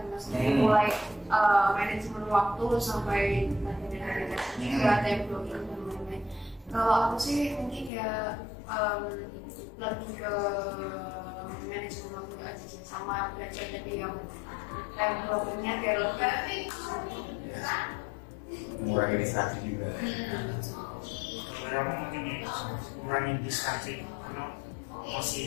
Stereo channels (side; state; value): right; drops out; at 7.9 s